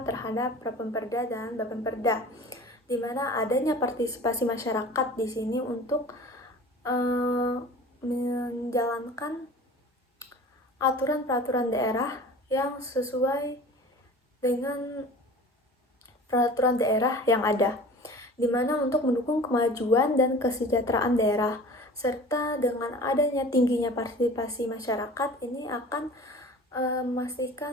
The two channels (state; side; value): normal; both; correlation 0.41